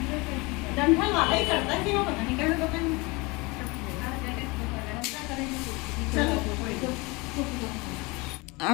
डंठल वाला ही करता है कि वो पता नहीं कैसे करता है।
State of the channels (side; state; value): right; quieter; 25.5 dB